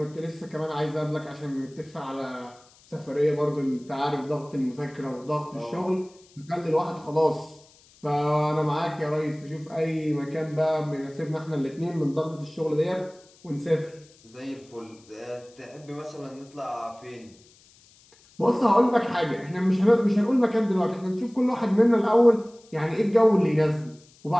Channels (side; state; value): left; noise; hiss, 28 dB below the sound